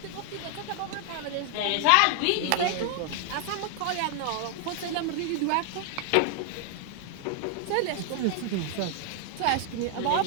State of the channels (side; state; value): both; different; correlation 0.00